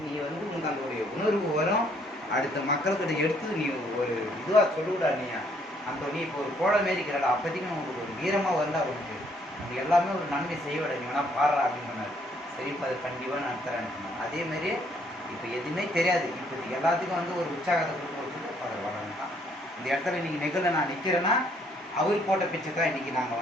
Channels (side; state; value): both; normal; correlation 0.66